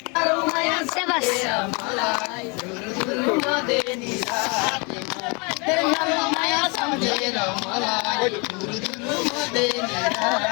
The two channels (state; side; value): quieter; right; 31.0 dB